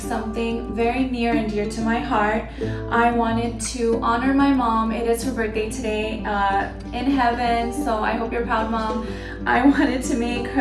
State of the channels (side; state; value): both; identical; correlation 1.00